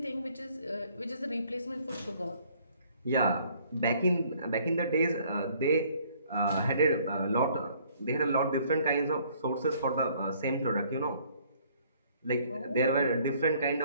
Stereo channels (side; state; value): both; inverted; correlation -0.61